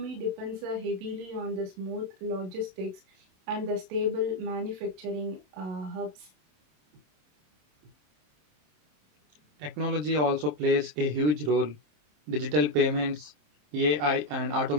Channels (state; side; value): late; left; 27 ms